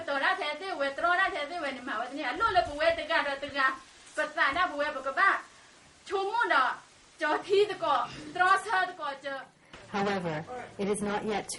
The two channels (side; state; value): both; identical; correlation 1.00